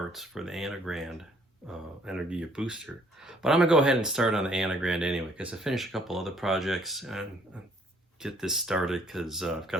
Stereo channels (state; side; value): normal; both; correlation 0.63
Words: for the Anigrand Energiya booster. But I'm gonna go ahead and start on the Anigrand anyway, because I finished a couple other projects and get this started because I've